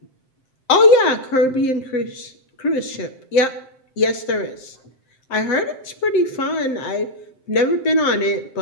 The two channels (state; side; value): late; right; 7.6 ms